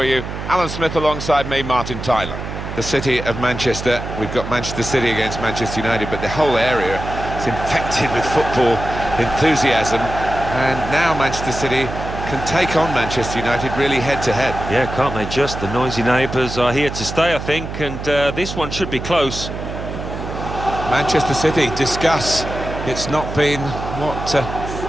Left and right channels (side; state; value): right; noise; hum, 7 dB below the sound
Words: you, Alan Smith alongside me, Martin Tyler. The city of Manchester, we've got Manchester City against Manchester United, but the whole area is infected with football enthusiasm, and now Manchester City can take on Manchester United really head-to-head. Yeah, can't they just? The noisy neighbours are here to stay, I think, and this one should be close. Manchester City, discuss. It's not been what